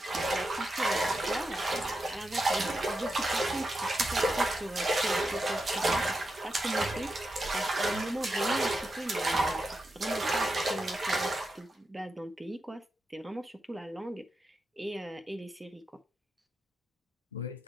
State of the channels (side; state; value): both; normal; correlation 0.88